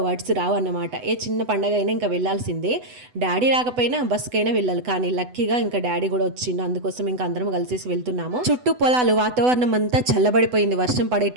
వర్డ్స్ రావు అన్నమాట. ఏ చిన్న పండగ అయినా ఇంకా వెళ్ళాల్సిందే. డాడీ రాకపోయినా బస్కైనా వెళ్ళాలి, కానీ లక్కీగా ఇంకా డాడీ కూడా వచ్చిండు. అందుకోసం ఇంకా అందరం కలిసేసి వెళ్తున్నాము. చుట్టూ పొలాలు, వాతావరణం అంతా చల్లబడిపోయింది, వర్షం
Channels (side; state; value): left; late; 8.0 ms